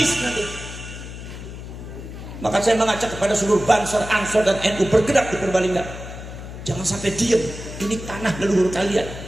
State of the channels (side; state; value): left; noise; hum, 11 dB below the sound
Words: nanti. Maka saya mengajak kepada seluruh Banser, Ansor dan NU bergerak di Purbalingga. Jangan sampai diam. Ini tanah leluhur kalian,